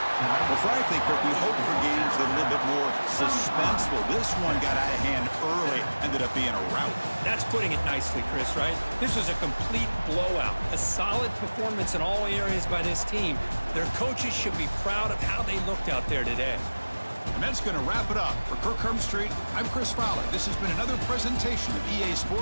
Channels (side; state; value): both; inverted; correlation -1.00